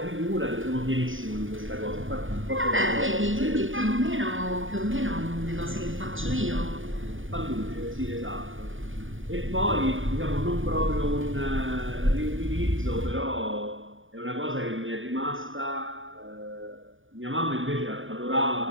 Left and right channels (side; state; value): left; late; 0.57 ms